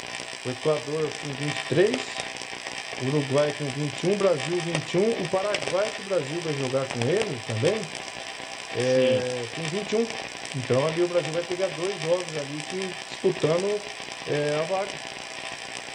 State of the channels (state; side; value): identical; both; correlation 1.00